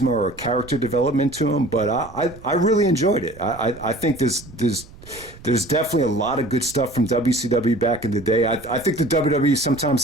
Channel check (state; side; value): noise; right; rumble, 20 dB below the sound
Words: or character development to him, but I really enjoyed it. I think there's definitely a lot of good stuff from WCW back in the day. I think the WWE, sometimes